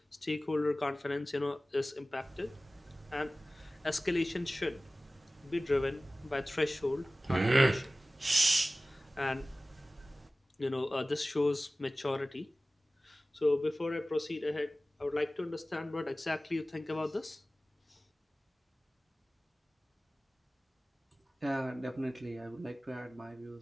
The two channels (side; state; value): both; normal; correlation 0.97